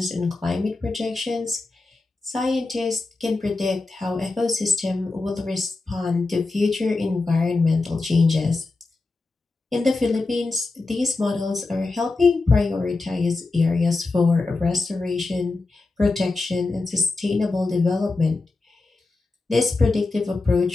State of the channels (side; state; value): right; quieter; 3.5 dB